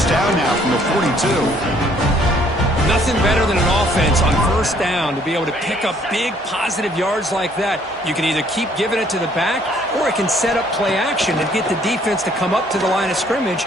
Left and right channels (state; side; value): normal; both; correlation 0.63